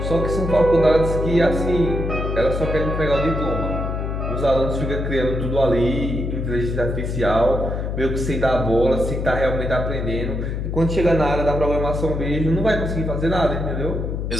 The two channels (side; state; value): left; noise; hum, 2 dB below the sound